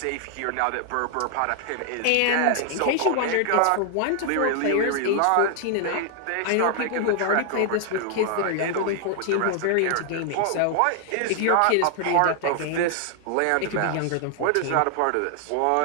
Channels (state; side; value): different; both; correlation 0.00